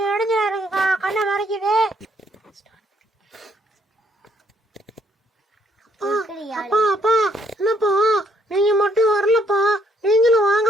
இடைஞ்சலா இருக்குக்கா, கண்ணை மறைக்குது. அப்பா அப்பா என்னப்பா நீங்க மட்டும் வரலப்பா, நீங்களும்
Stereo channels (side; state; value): both; normal; correlation 0.68